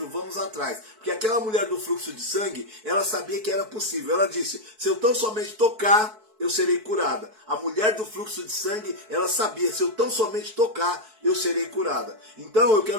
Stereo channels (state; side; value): late; left; 4.6 ms